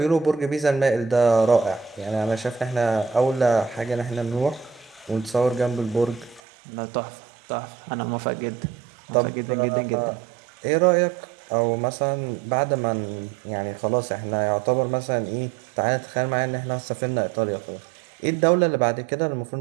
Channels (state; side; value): drops out; left; at 6.4 s